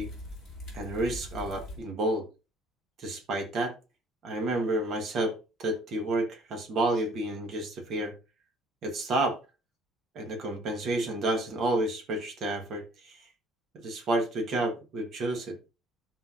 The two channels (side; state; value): both; normal; correlation 0.57